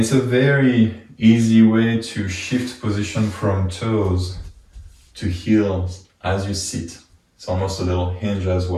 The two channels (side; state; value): both; identical; correlation 1.00